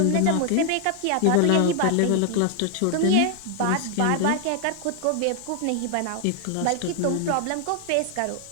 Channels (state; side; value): different; both; correlation 0.00